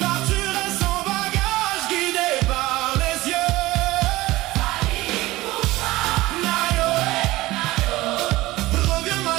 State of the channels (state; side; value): quieter; left; 18.7 dB